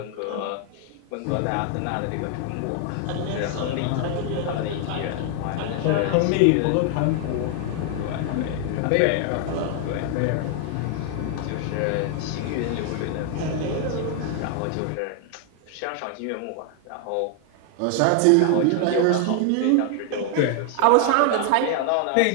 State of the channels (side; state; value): both; different; correlation 0.00